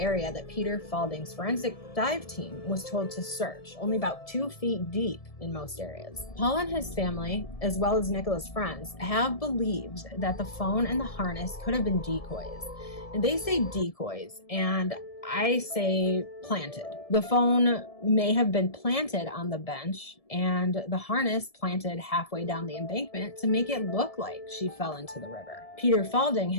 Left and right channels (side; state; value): right; late; 1.7 ms